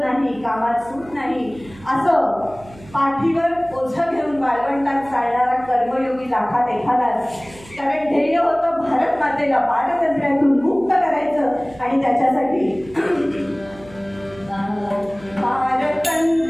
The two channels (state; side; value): noise; right; hum, 21 dB below the sound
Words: नाही, कामात सूट नाही, असं पाठीवर ओझं घेऊन वाळवंटात चालणारा कर्मयोगी लाखात एखादाच. कारण ध्येय होतं भारत मातेला पारतंत्र्यातून मुक्त करायचं आणि त्याच्यासाठी